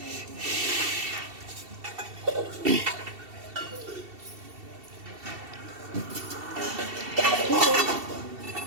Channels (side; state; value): left; late; 2.7 ms